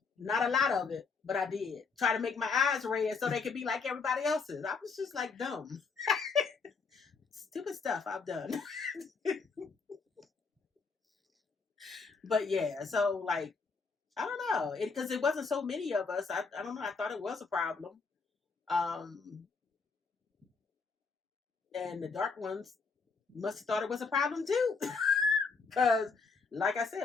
Not a lot of it, but I did. Try to make my eyes red so they could be like everybody else's. I was just like dumb. Stupid stuff I've done. But yeah, so like, I don't know. Because it wasn't so many of us. I don't know. I thought it was a problem. And the dark ones must have thought it was a problem too. Because, like I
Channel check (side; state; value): right; quieter; 4.8 dB